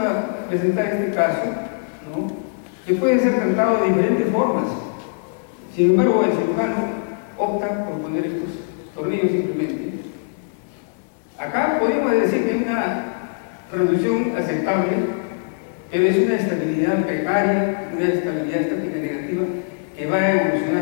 presentar este caso, ¿no?, que puede ser tratado de diferentes formas. Sin embargo, el cirujano opta por poner estos tornillos simplemente. Acá podemos decir que hay una reducción aceptable, pero es una estabilidad precaria, una estabilidad estática negativa que va a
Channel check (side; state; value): right; silent; 64 dB below the other